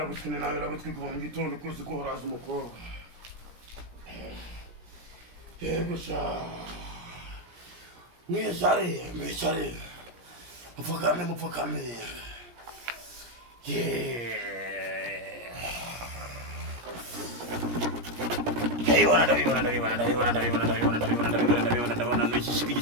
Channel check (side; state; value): left; late; 17 ms